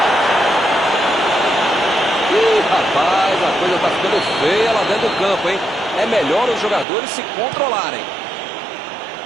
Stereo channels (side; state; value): left; drops out; at 6.9 s